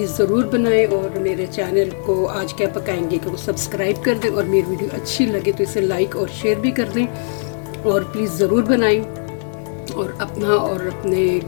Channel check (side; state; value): right; silent; digital silence